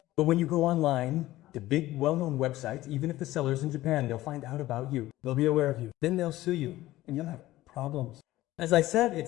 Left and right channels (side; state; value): right; quieter; 16.2 dB